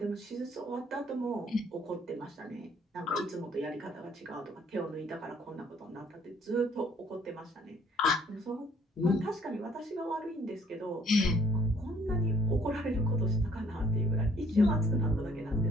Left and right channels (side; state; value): both; normal; correlation 0.61